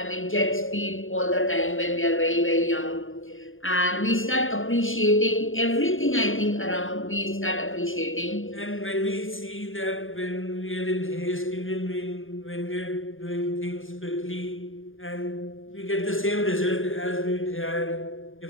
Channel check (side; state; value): right; late; 0.59 ms